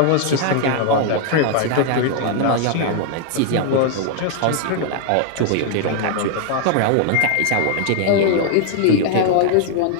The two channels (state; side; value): different; both; correlation 0.00